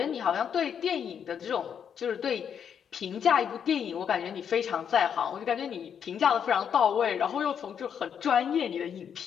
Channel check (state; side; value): quieter; right; 7.9 dB